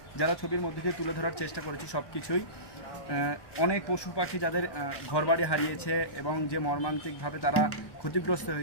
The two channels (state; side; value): late; right; 1.2 ms